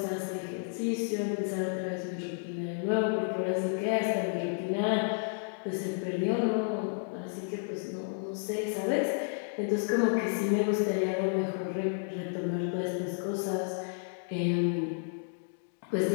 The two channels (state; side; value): silent; right; digital silence